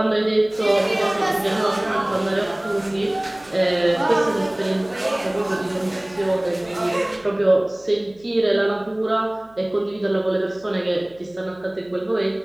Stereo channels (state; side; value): noise; right; hum, 28 dB below the sound